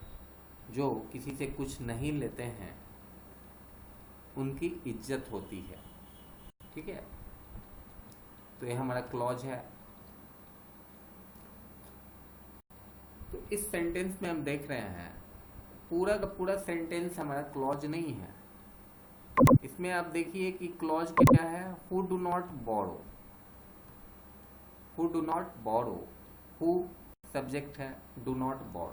जो किसी से कुछ नहीं लेते हैं उनकी इज्जत होती है, ठीक है। तो ये हमारा क्लॉज है। तो इस सेंटेंस में हम देख रहे हैं पूरा का पूरा सेंटेंस हमारा क्लॉज नहीं है। इसमें आप देखिए कि क्लॉज क्या है, who do not borrow, who do not borrow, who subject है, डू नॉट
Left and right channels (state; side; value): identical; both; correlation 1.00